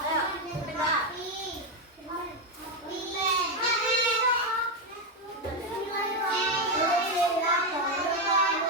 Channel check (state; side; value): normal; both; correlation 0.06